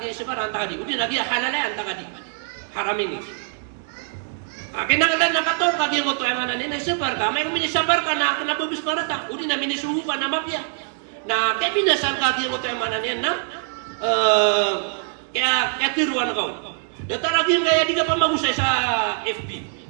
gyud sa barka anta di udi nagi halala anta di haramin kinanglan nakatawan ka gyud mo to mana ni sa barka may kuminya sa barka na kinabubis marata udi na minisugo ka na mafia na kaya binasan ka gyud mo to mana ni na kaya tiruan kau. Datang lagi kaya di ka magusay sa FB.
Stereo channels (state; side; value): silent; left; 63 dB below the other